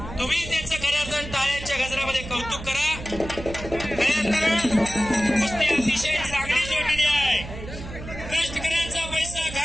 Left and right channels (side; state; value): right; noise; hum, 11 dB below the sound